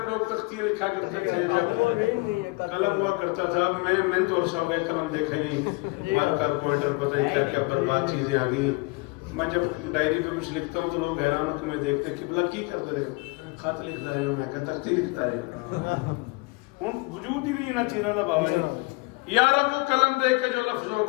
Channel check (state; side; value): quieter; right; 26.4 dB